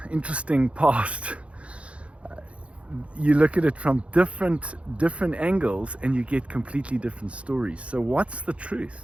interesting past, you look at it from different angles and you get completely different stories. So what's the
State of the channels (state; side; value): late; left; 0.062 ms